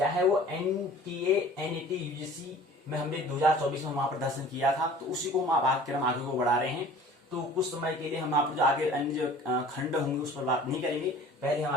है वो एनटीए, एनईटी, यूजीसी में हमने 2024 में वहां पर दर्शन किया था, तो उसी को हम पाठ्यक्रम आगे को बढ़ा रहे हैं। तो कुछ समय के लिए हम आप जो आगे अन्य जो खंड होंगे उस पर बात नहीं करेंगे। पहले हम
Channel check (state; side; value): normal; both; correlation 0.46